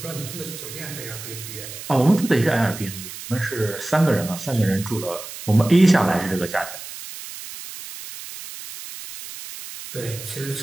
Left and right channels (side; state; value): right; noise; hiss, 12 dB below the sound